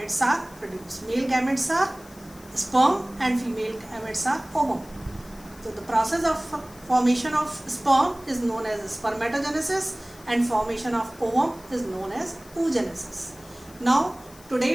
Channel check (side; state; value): left; noise; hiss, 23 dB below the sound